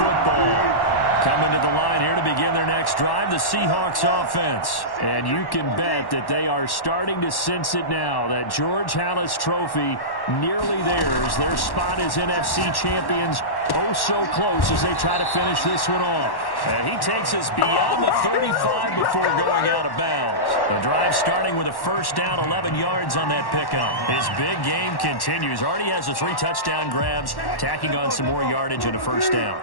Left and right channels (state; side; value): late; right; 1.1 ms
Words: Coming to the line here to begin their next drive, the Seahawks offense. And you can bet that they are starting to sense it now. That George Halas trophy nearly theirs. Their spot as NFC champions oh so close as they try to finish this one off. And he takes us beyond the 35 before going out of bounds. The drive starting with a first down, 11 yards on that pickup. His big game continues. Already has the 3 touchdown grabs, tacking on some more yardage and a first down.